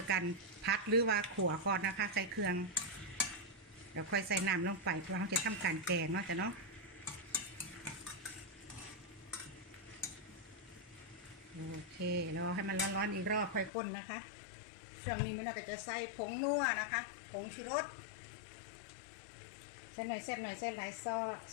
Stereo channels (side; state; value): right; drops out; at 13.7 s